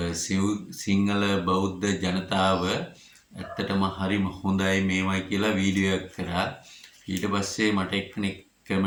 සිංහල බෞද්ධ ජනතාව ඇත්තටම හරිම හොඳයි මේවයි කියලා වීඩියෝ එකක් කරා ඊට පස්සේ මට එක්කෙනෙක්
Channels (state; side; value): identical; both; correlation 1.00